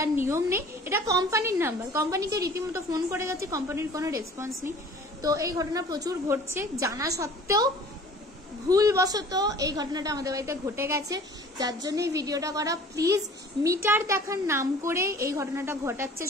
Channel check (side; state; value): both; normal; correlation 0.48